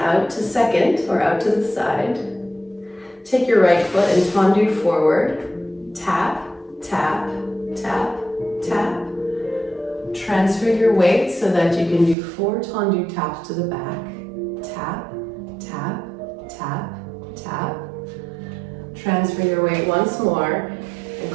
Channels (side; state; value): left; drops out; at 12.2 s